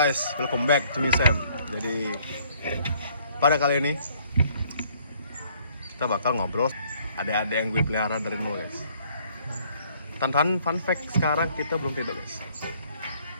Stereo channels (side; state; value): both; inverted; correlation -0.62